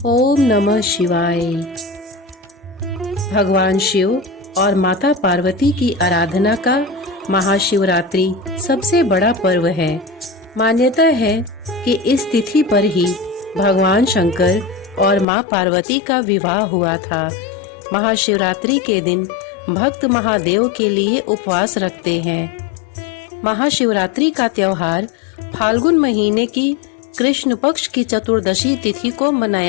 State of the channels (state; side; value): drops out; right; at 15.2 s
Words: नमः शिवाय। भगवान शिव और माता पार्वती की आराधना का महाशिवरात्रि सबसे बड़ा पर्व है। मान्यता है कि इस तिथि पर ही भगवान शंकर और मां पार्वती का विवाह हुआ था। महाशिवरात्रि के दिन भक्त महादेव के लिए उपवास रखते हैं। महाशिवरात्रि का त्योहार फाल्गुन महीने की कृष्ण पक्ष की चतुर्दशी तिथि को